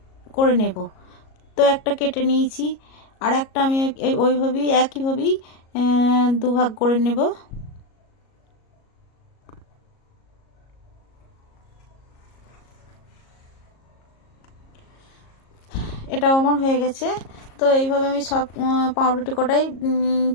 করে নেব। তো একটা কেটে নিয়েছি, আর একটা আমি ওইভাবেই একইভাবেই দুভাগ করে নেব। এটাও আমার হয়ে গেছে। তো এইভাবে আমি সব পাউরুটি কটাই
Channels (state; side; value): late; right; 37 ms